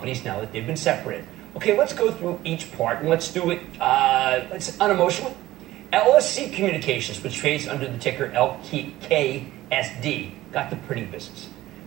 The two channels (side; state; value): left; quieter; 15.9 dB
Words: now that they've been separated? Okay, let's go through each part, and let's do it unemotionally. LSC Communications, which trades under the ticker LKSD, got the printing business.